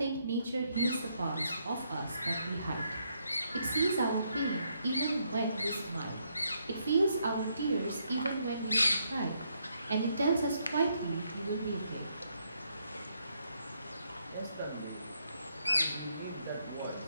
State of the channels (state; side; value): inverted; both; correlation -0.75